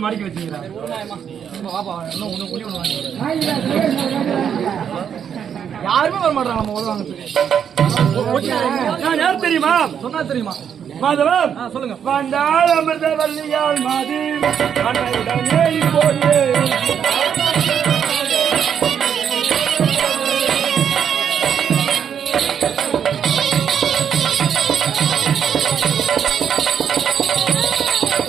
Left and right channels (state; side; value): quieter; left; 8.2 dB